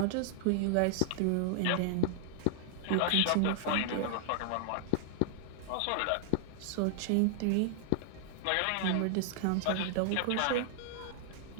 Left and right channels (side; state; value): both; different; correlation -0.01